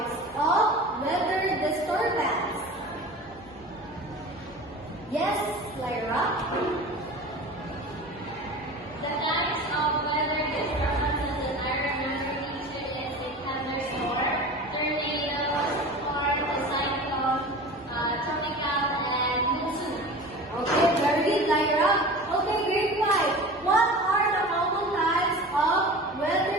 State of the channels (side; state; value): left; noise; hum, 26 dB below the sound